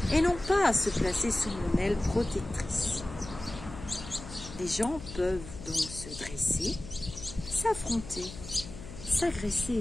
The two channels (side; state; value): left; noise; hum, 13 dB below the sound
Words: et non pas à se placer sous mon aile protectrice. Les gens peuvent donc se dresser, s'affronter,